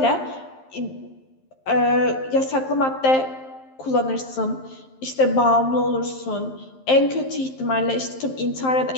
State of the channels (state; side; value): late; right; 11 ms